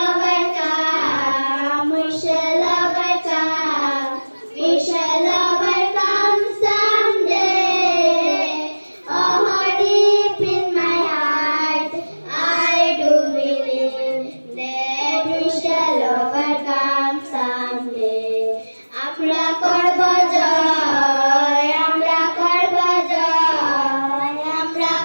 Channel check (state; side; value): inverted; both; correlation -1.00